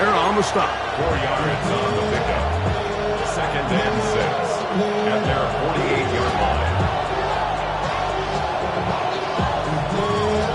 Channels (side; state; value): both; identical; correlation 1.00